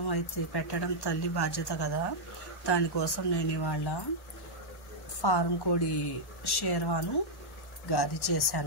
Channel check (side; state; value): right; late; 1.1 ms